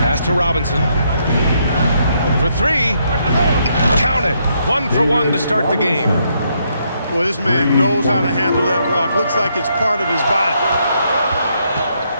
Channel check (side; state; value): both; inverted; correlation -0.75